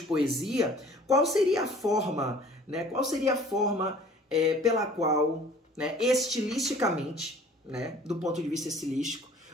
poesia, qual seria a forma, né? Qual seria a forma pela qual, né, estilisticamente, né, do ponto de vista estilístico,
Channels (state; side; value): normal; both; correlation 0.50